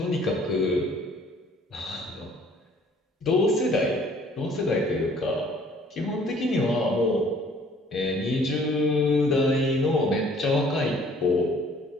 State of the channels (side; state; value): both; normal; correlation 0.57